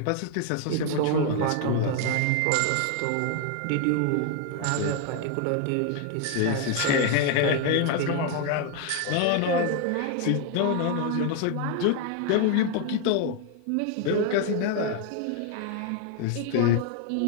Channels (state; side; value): different; both; correlation 0.01